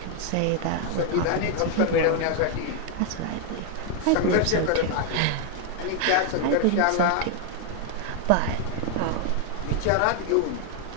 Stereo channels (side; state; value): both; different; correlation 0.00